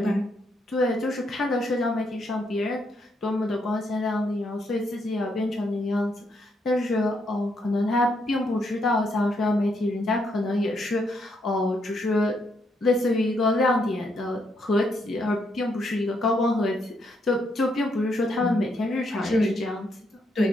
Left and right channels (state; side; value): normal; both; correlation 0.76